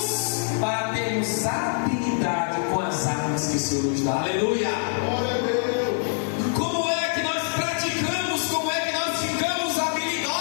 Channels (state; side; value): silent; right; digital silence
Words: para termos habilidade com as armas que o Senhor nos dá. Aleluia! Glória a Deus! Como é que nós praticamos? Como é que nós ficamos